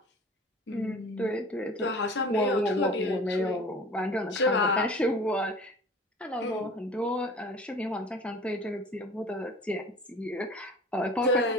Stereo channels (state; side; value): normal; both; correlation 0.42